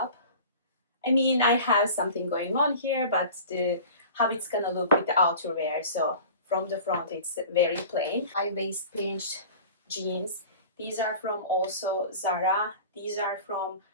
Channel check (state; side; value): inverted; both; correlation -0.40